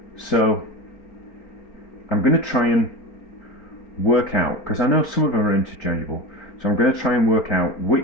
So I'm going to try and work out, because I know some of them are interchangeable, so I'm going to try and work out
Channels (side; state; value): right; late; 4.4 ms